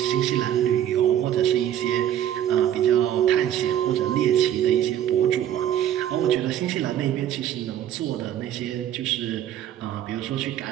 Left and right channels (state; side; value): quieter; left; 10.9 dB